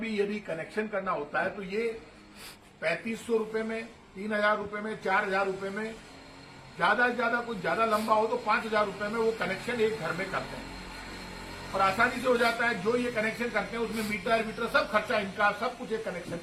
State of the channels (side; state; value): both; identical; correlation 1.00